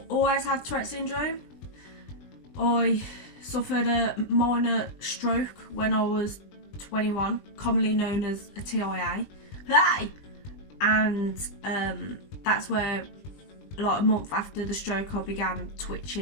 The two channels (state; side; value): late; right; 20 ms